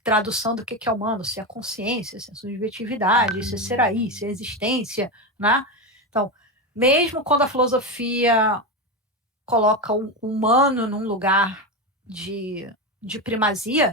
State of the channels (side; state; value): both; normal; correlation 0.15